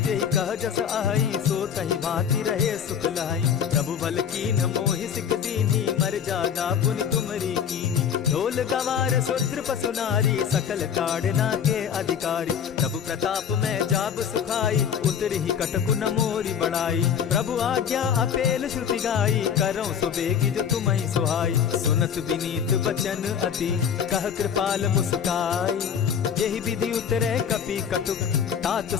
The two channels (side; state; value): right; quieter; 7.9 dB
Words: कह जस अहई, सो तहि भांति रहे सुख लहई। प्रभु बल कीन मोहि सिख दीनी, मर जादा पुनि तुमरी कीनी। ढोल गवार शूद्र पशु नारी, सकल ताड़ना के अधिकारी। प्रभु प्रताप में जाब सुखाई, उतरि ही कटकु न मोरी बड़ाई। प्रभु आज्ञा अपेल श्रुति गाई, करऊं सुबेगी जो तुम्हि सुहाई। सुनत विनीत बचन अति, कह कृपाल मुस्काई। जेहि विधि उतरे कपि कटुक, तात